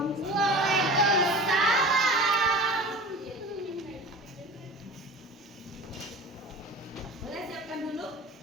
Waalaikumsalam. Boleh siapkan dulu?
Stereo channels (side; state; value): both; normal; correlation 0.37